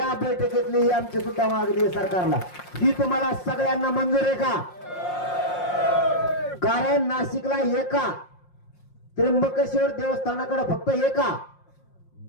बैठकीतली ही आमची सुद्धा मागणी आहे सरकारला. ही तुम्हाला सगळ्यांना मंजूर आहे का? कारण नाशिकला एका त्र्यंबकेश्वर देवस्थानाकडे फक्त एका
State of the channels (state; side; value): late; right; 5.6 ms